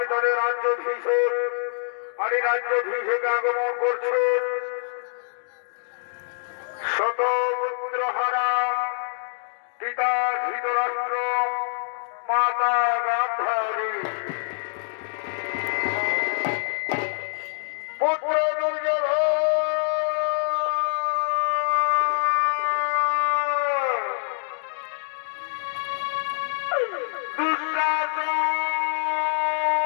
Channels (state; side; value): silent; right; digital silence